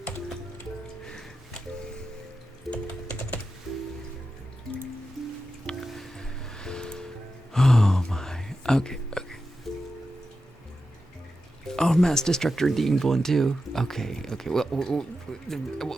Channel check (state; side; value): normal; both; correlation 0.90